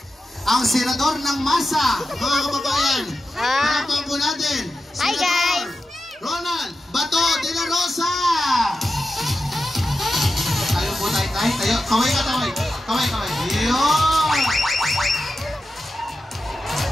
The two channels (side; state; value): both; normal; correlation 0.91